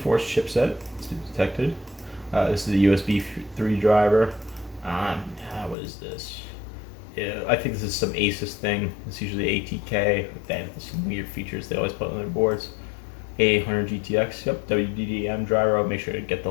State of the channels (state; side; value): drops out; right; at 5.8 s